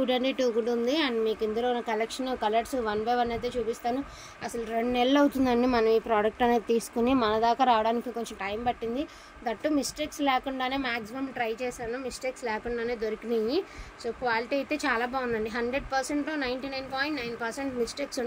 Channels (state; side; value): identical; both; correlation 1.00